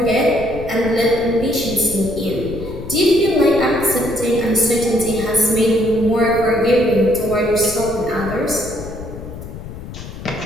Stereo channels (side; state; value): left; noise; rumble, 12 dB below the sound